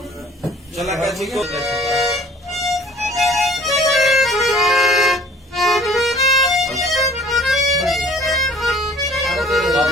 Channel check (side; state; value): both; normal; correlation 0.51